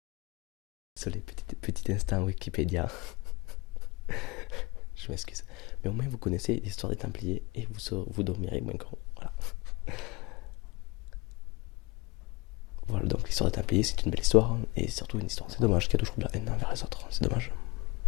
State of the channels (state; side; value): quieter; right; 24.2 dB